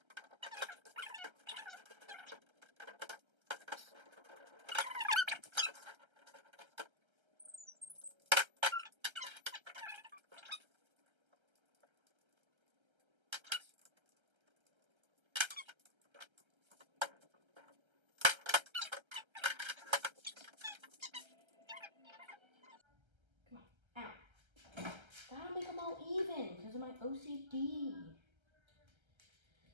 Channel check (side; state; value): left; late; 1.3 ms